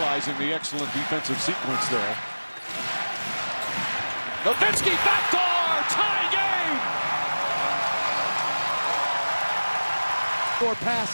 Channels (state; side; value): inverted; both; correlation -1.00